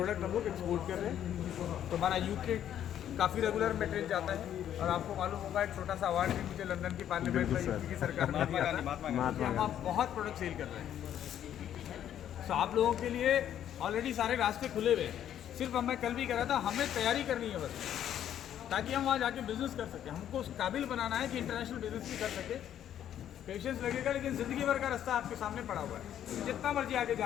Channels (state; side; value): quieter; right; 10.5 dB